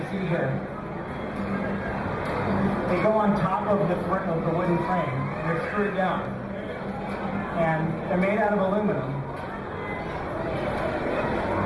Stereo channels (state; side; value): identical; both; correlation 1.00